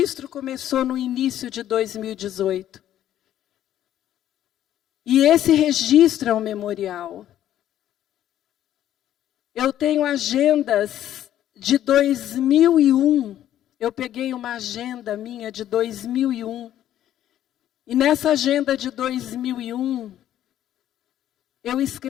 começou no início de 2018. E esse registro é um memorial. Eu tenho agendas de 2001. Eu peguei uma agenda minha de 2001. E nessa agenda de 2001, eu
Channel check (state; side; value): quieter; right; 11.8 dB